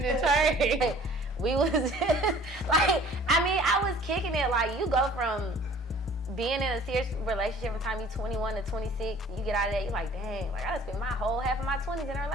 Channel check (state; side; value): normal; both; correlation 0.51